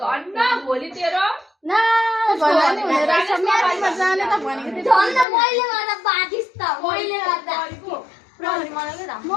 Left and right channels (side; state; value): right; drops out; at 5.2 s